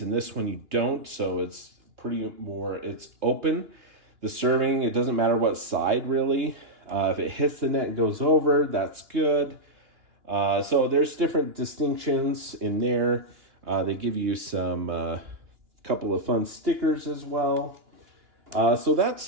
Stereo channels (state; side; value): late; left; 2.9 ms